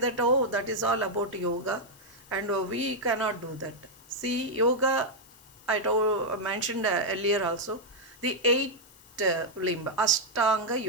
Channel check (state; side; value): noise; left; hiss, 24 dB below the sound